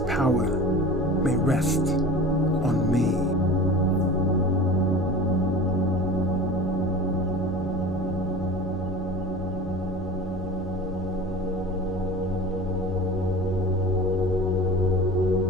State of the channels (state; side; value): normal; both; correlation 0.36